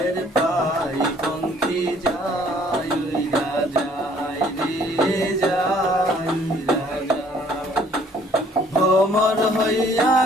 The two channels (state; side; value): normal; both; correlation 0.59